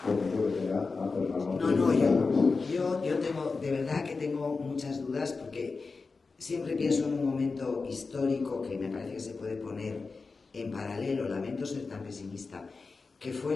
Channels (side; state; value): right; quieter; 4.3 dB